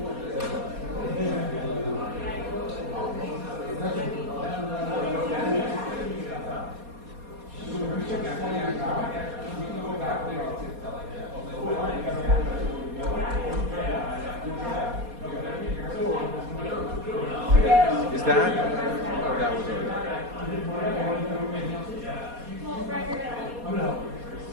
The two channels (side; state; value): left; late; 4.2 ms